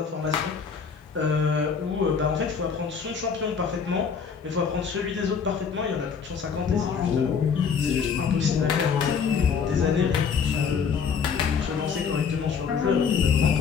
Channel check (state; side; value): quieter; right; 6.3 dB